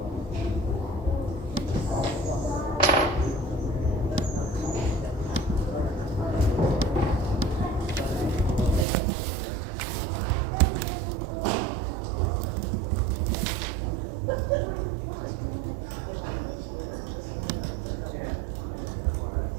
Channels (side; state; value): left; drops out; at 8.8 s